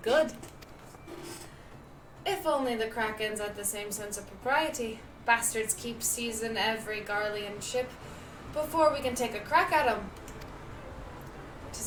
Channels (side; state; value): both; identical; correlation 1.00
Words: Good. If only the Krakens had the same sense of propriety. Bastards keep seizing every Garlean ship before we can take a crack at 'em.